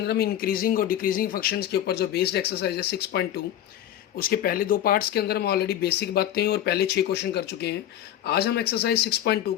हम इंक्रीजिंग और डिक्रीजिंग फंक्शंस के ऊपर जो बेस्ड एक्सरसाइज है 6.2, उसके पहले 2 पार्ट्स के अंदर हम ऑलरेडी बेसिक बातें और पहले 6 क्वेश्चन कर चुके हैं। आज हम एक्सरसाइज 6.2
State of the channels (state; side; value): quieter; right; 11.5 dB